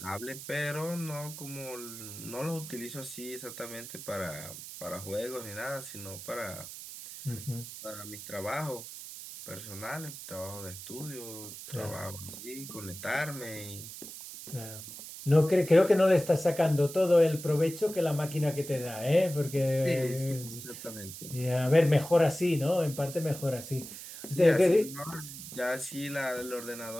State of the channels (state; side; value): noise; right; hiss, 12 dB below the sound